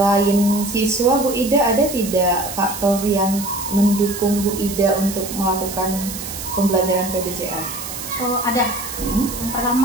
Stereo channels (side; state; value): right; noise; hiss, 9 dB below the sound